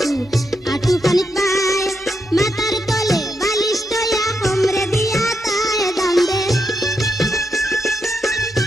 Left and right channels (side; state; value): both; normal; correlation 0.83